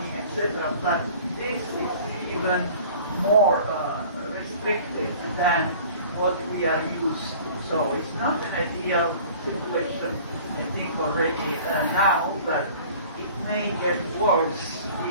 etc. But this is even more restrictive than what we are used to. So it's not an ideal situation, I think, already now, but it may get worse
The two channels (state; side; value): inverted; both; correlation -0.47